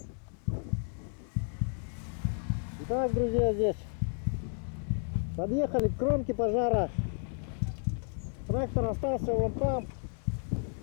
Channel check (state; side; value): silent; right; 56 dB below the other